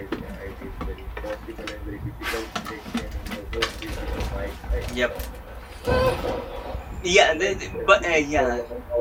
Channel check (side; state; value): both; identical; correlation 1.00